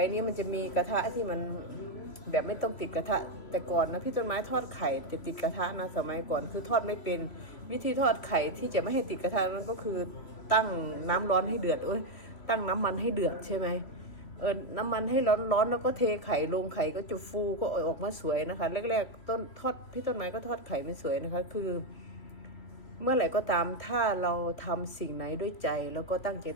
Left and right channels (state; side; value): late; right; 3.0 ms